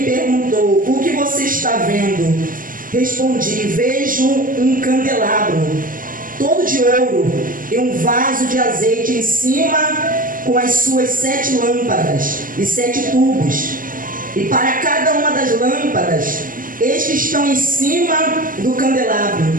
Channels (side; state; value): left; late; 0.40 ms